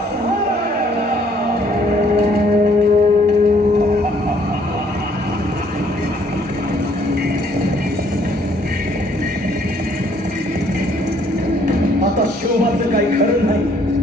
आता शिवबाचं काही खरं नाही.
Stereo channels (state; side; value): normal; both; correlation 0.64